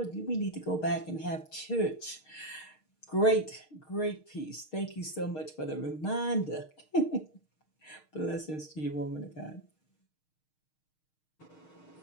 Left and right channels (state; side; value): late; right; 6.5 ms